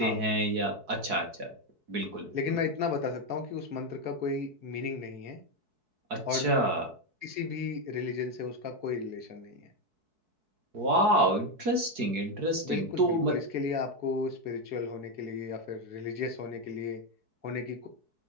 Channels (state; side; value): late; left; 4.6 ms